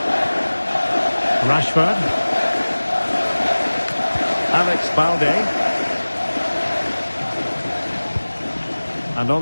Rashford. Alex Balde. And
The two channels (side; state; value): both; inverted; correlation -1.00